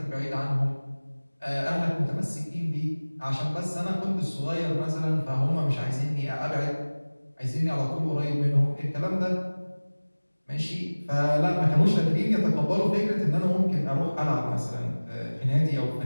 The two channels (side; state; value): both; inverted; correlation -1.00